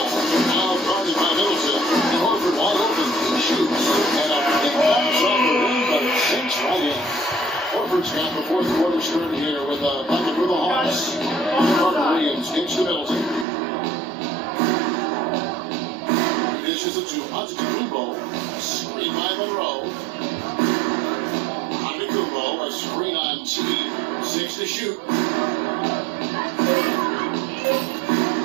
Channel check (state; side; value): drops out; left; at 13.5 s